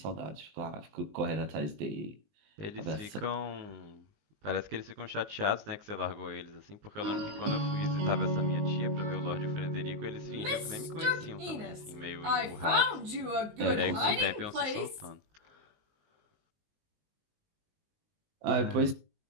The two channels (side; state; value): left; late; 19 ms